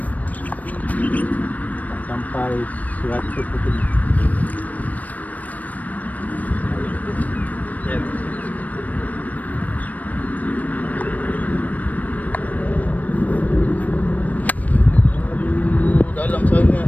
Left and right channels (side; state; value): right; late; 0.073 ms